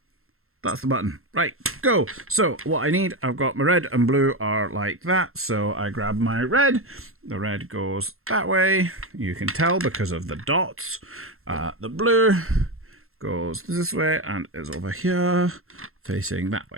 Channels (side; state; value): left; late; 0.62 ms